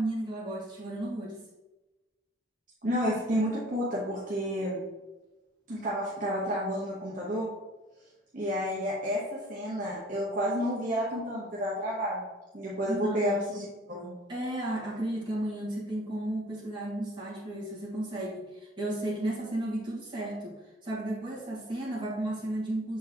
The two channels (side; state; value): both; normal; correlation 0.51